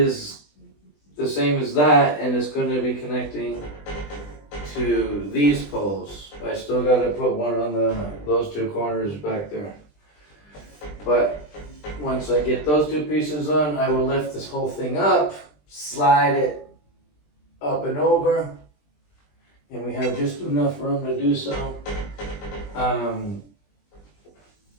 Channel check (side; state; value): right; late; 20 ms